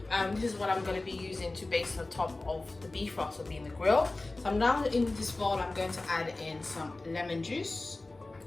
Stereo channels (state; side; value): quieter; right; 3.1 dB